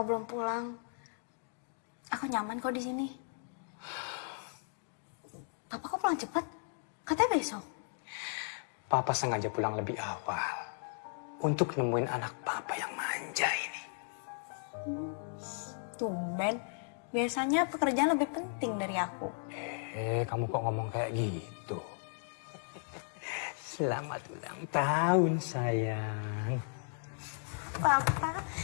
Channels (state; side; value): silent; right; digital silence